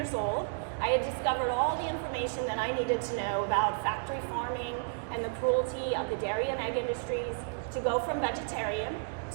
old, I had discovered all the information that I needed to know about factory farming and the cruelty of the dairy and egg industries to go from vegetarian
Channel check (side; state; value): left; silent; digital silence